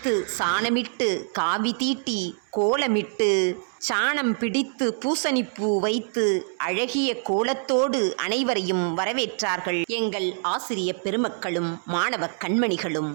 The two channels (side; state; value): left; silent; 62 dB below the other